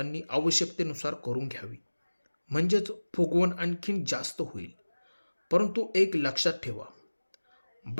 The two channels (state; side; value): inverted; both; correlation -1.00